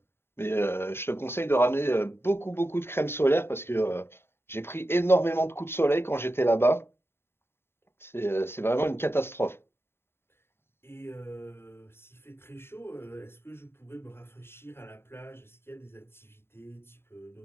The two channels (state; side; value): late; right; 0.11 ms